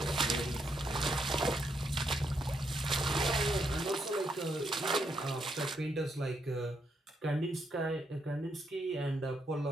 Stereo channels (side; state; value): both; normal; correlation 0.78